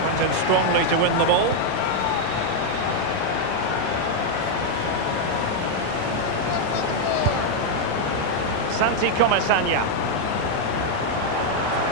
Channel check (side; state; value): both; different; correlation 0.00